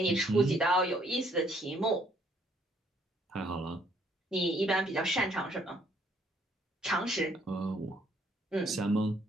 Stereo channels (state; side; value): normal; both; correlation 0.67